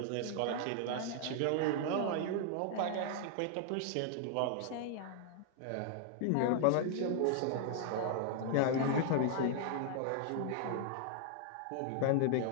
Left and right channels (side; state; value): both; different; correlation 0.00